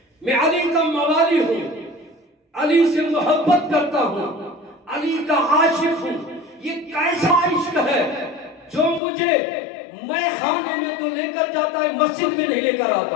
میں علی کا موالی ہوں، علی سے محبت کرتا ہوں، علی کا عاشق ہوں. یہ کیسا عشق ہے جو مجھے میں خانے میں تو لے کر جاتا ہے، مسجد میں نہیں لے کر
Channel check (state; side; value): drops out; right; at 9.0 s